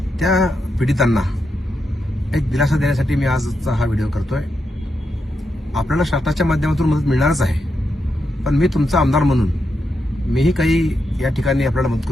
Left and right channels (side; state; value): both; normal; correlation 0.84